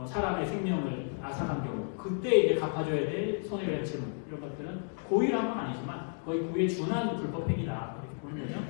사람의 생명을 앗아간 경우 그때 이제 갚아줘야 될 손해배상 채무 이런 것들은 고의를 한 건 아니지만 거의 고의에 준한 불법행위다 이렇게 보는 거죠.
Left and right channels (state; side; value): silent; right; 56 dB below the other